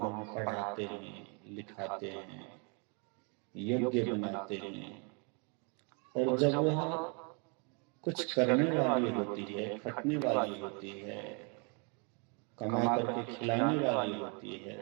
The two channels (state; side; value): quieter; left; 35.6 dB